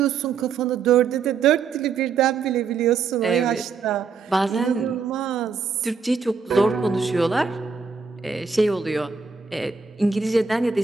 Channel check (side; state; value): left; quieter; 5.4 dB